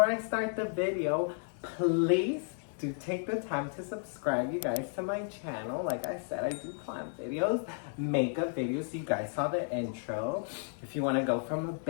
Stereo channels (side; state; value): right; silent; 56 dB below the other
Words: I start the video, please do take the time to subscribe, you guys, to my channel. Like I said, I do plant videos, makeup videos. You guys saw the intro. If you want to go from a